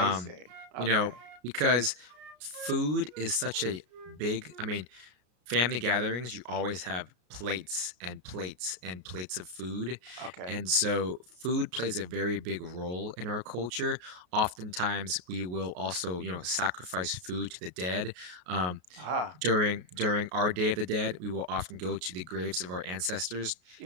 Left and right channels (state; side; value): late; left; 33 ms